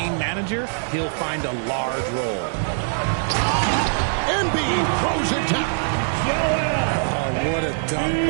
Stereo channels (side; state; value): left; silent; digital silence